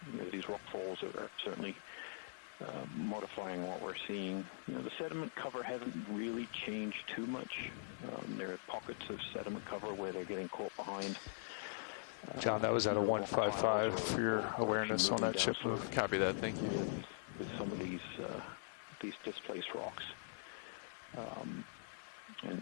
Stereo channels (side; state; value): right; silent; digital silence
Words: These rock falls are certainly modifying what we're seeing. The sediment cover hasn't really changed too much. There are pockets of sediment cover where they're getting caught behind John, that was at a rock piles for your or actually moving down slope. Copy that, thank you. With some of these displaced rocks and